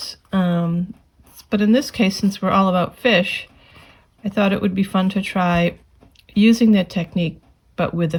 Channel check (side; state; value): both; identical; correlation 1.00